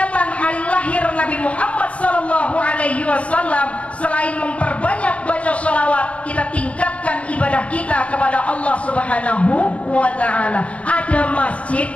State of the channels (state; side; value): late; right; 0.064 ms